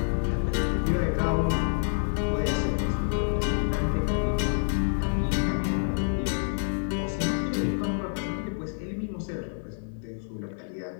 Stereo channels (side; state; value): right; silent; digital silence